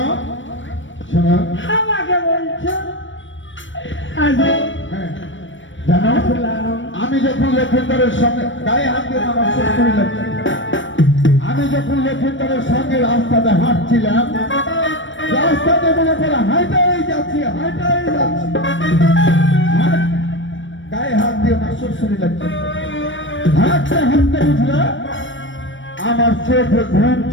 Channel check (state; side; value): late; right; 0.56 ms